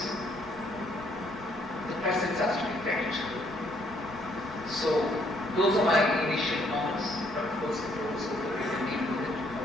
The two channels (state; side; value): normal; both; correlation 0.68